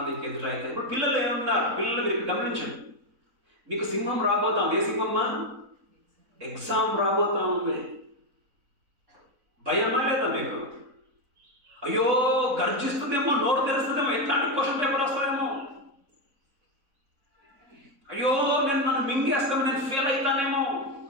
ఎదురైతే ఇప్పుడు పిల్లలు ఏమన్నారు, పిల్లలు మీరు గమనించండి. మీకు సింహం రాబోతాం. ఏ సింహమ్మా? ఎగ్జామ్ రాబోతా ఉంది. భయమా లేదా మీకు? అయ్యో గర్జిస్తుందేమో, నోరు తెరుస్తుందేమో, ఎట్లాంటి క్వశ్చన్ పేపర్ వస్తుందేమో, అయ్యో నన్ను మింగేస్తాము, నేను ఫెయిల్ అవుతానేమో.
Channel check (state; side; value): late; left; 4.0 ms